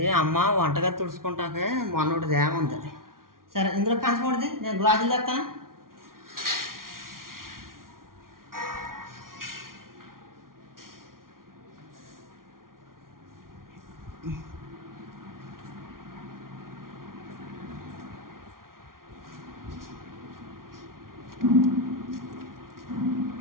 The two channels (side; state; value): left; late; 0.92 ms